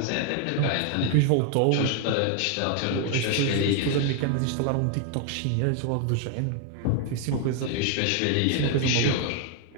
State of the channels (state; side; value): different; both; correlation 0.00